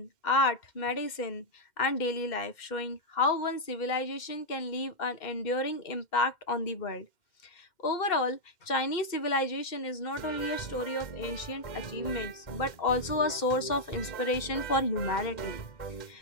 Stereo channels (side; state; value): right; late; 2.1 ms